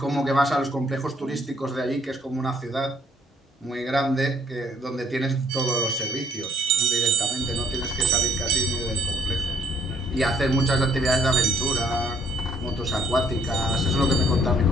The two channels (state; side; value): normal; both; correlation 0.62